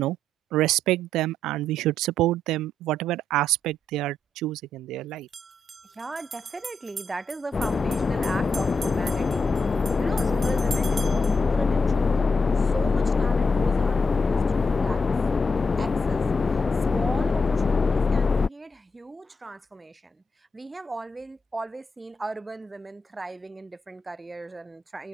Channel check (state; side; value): normal; both; correlation 0.81